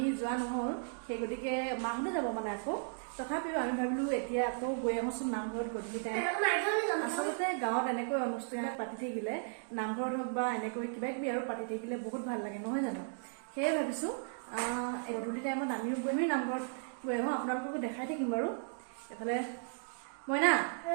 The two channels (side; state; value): left; silent; digital silence